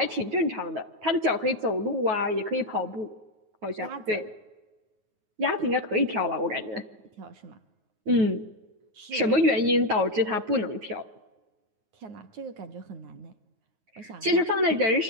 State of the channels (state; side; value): late; left; 9.4 ms